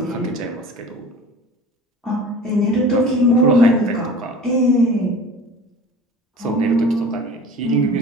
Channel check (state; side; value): normal; both; correlation 0.40